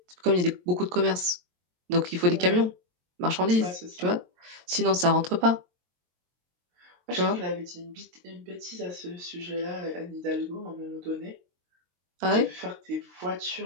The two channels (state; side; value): late; left; 23 ms